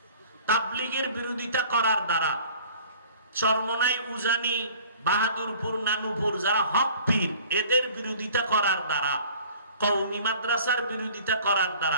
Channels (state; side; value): inverted; both; correlation -0.49